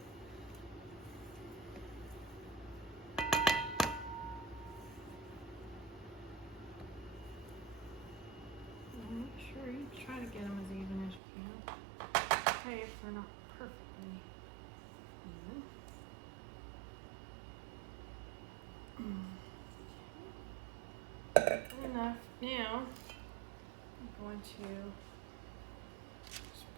Make sure you try to get them as even as you can. Okay, if they're not perfectly even. Good enough. Now, I'm going to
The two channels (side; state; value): left; drops out; at 11.2 s